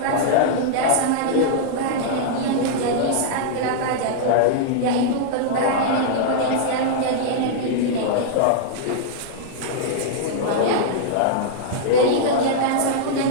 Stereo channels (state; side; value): different; both; correlation -0.01